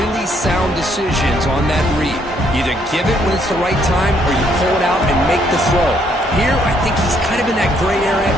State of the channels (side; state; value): both; normal; correlation 0.69